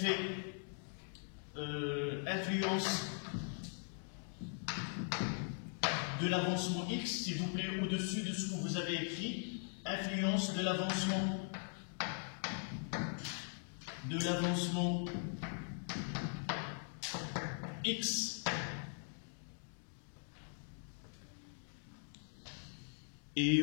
influence de l'avancement X, s'il vous plaît, au-dessus de ce que vous avez écrit. Influence de l'avancement X. Et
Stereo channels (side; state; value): right; silent; 51 dB below the other